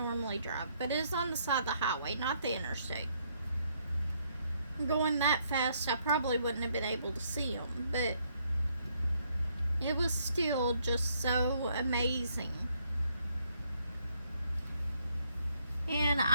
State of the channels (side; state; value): both; inverted; correlation -0.71